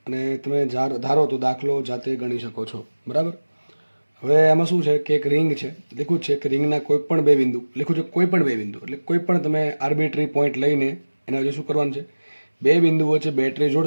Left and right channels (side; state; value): both; inverted; correlation -1.00